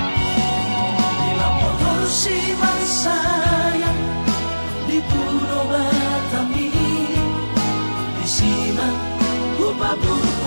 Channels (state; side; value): inverted; both; correlation -1.00